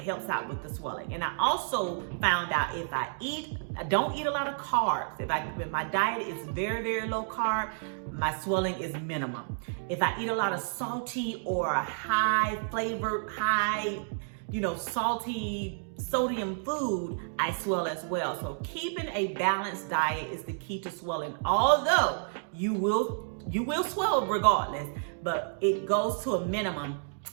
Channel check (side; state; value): left; silent; digital silence